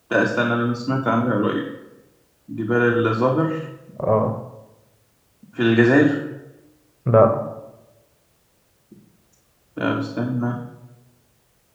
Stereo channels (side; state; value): both; identical; correlation 1.00